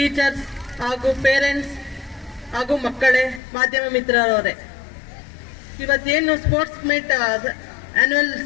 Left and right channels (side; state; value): right; drops out; at 3.4 s